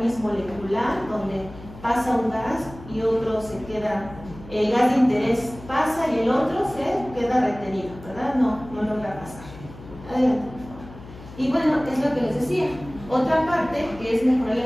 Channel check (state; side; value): noise; left; hum, 17 dB below the sound